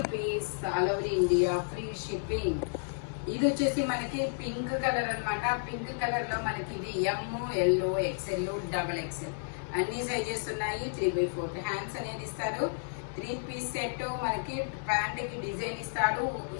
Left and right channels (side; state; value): right; silent; 57 dB below the other